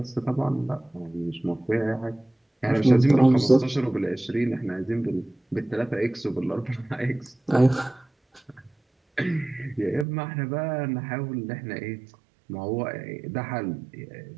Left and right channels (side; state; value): left; drops out; at 10.1 s